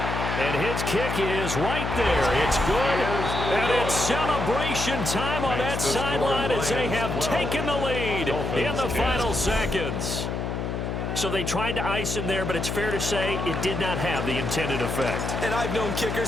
And his kick is right there. It's good, and it's celebration time on that sideline as they have taken the lead in the final seconds. So they tried to ice him there, but it's fair to say it did not have the intended effect. And I've known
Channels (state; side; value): noise; left; hum, 3 dB below the sound